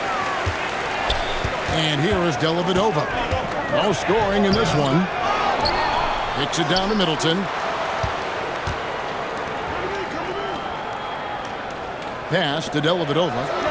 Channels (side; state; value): both; identical; correlation 1.00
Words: And here is Dellavedova. No scoring in this one. Kicks it down to Middleton. Pass to Dellavedova.